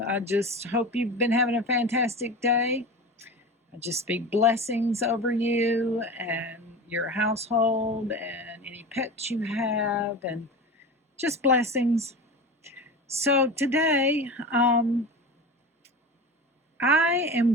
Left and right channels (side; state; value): both; normal; correlation 0.30